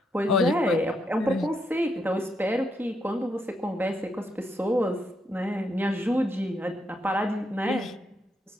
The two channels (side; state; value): both; normal; correlation 0.79